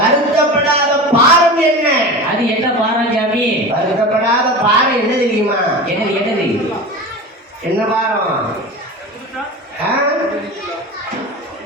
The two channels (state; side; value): normal; both; correlation 0.30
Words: பாரம் என்ன அது என்ன பாரம் சாமி வருத்தப்படாத பாரம் என்ன தெரியுமா என்னது என்னது என்ன பாரம்